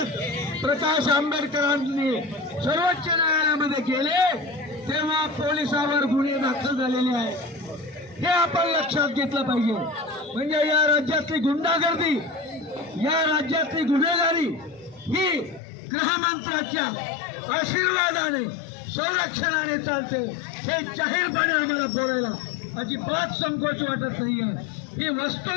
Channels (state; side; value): drops out; right; at 15.6 s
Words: प्रकाश आंबेडकरांनी सर्वोच्च न्यायालयामध्ये गेले तेव्हा पोलिसावर गुन्हे दाखल झालेले आहेत हे आपण लक्षात घेतलं पाहिजे. म्हणजे या राज्यातली गुंडागर्दी, या राज्यातली गुन्हेगारी ही गृहमंत्र्याच्या आशीर्वादाने, संरक्षणाने चालते हे जाहीरपणे आम्हाला बोलायला अजिबात संकोच वाटत नाहीये. ही